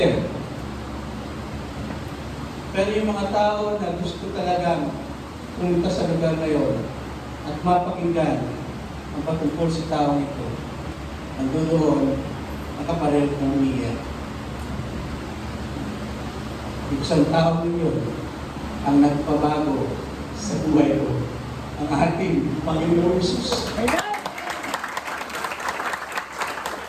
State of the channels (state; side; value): identical; both; correlation 1.00